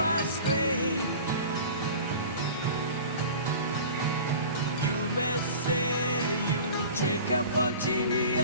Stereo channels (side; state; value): both; inverted; correlation -0.39